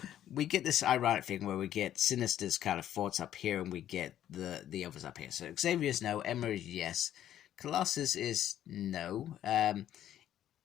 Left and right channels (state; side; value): quieter; right; 11.4 dB